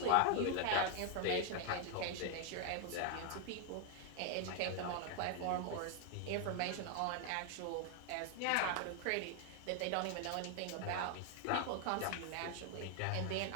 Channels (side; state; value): both; different; correlation 0.00